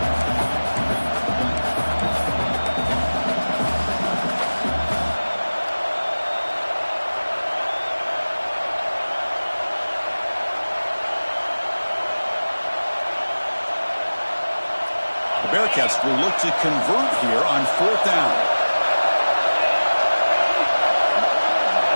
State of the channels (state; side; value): inverted; both; correlation -1.00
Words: Bearcats will look to convert here on fourth down.